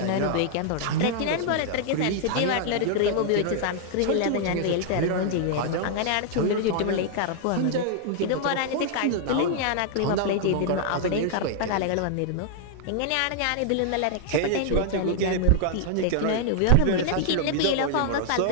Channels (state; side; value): different; both; correlation 0.00